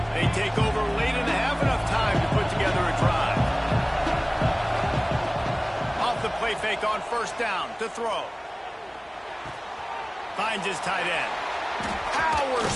Fake on first down to throw. Finds his tight end. Powers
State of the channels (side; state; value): both; identical; correlation 1.00